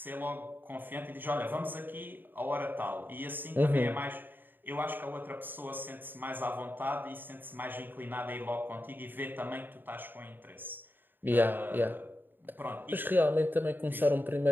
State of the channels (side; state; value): left; late; 0.093 ms